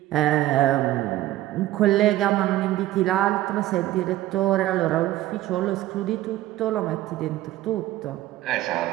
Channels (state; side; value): quieter; left; 15.0 dB